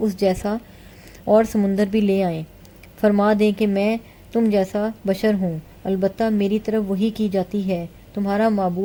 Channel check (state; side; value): identical; both; correlation 1.00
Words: جیسا اور سمندر بھی لے آئیں۔ فرما دیں کہ میں تم جیسا بشر ہوں، البتہ میری طرف وحی کی جاتی ہے، تمہارا